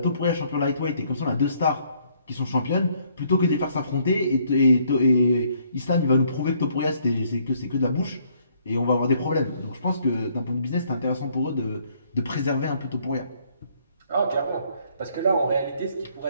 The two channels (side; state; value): both; inverted; correlation -0.66